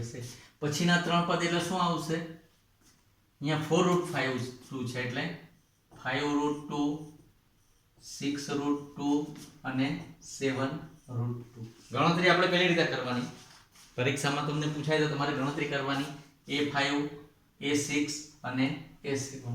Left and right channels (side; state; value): both; identical; correlation 1.00